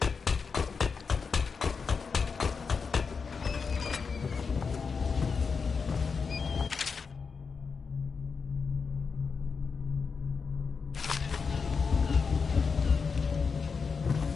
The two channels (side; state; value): right; quieter; 5.3 dB